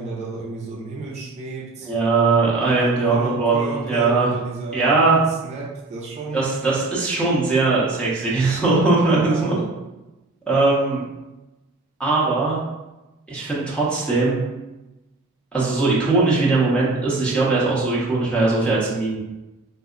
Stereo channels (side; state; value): left; quieter; 3.1 dB